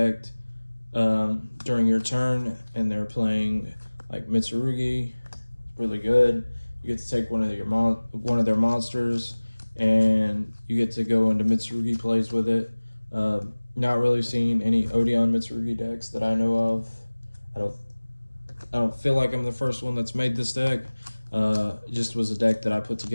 during your turn and they're playing like Mitsurugi, really good. You get to take one of their monsters and you get to go into Mitsurugi plays with it. Not really seeing any Odion Mitsurugi decks that I know of. I don't feel like I'm the first one that's made this deck. It just was a deck that I put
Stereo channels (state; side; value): inverted; both; correlation -1.00